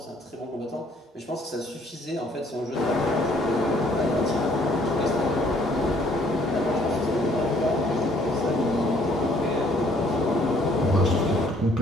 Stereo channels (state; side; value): normal; both; correlation 0.63